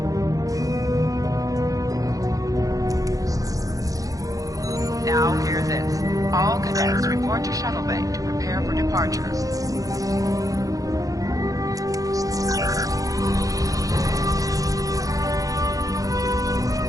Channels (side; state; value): left; late; 0.17 ms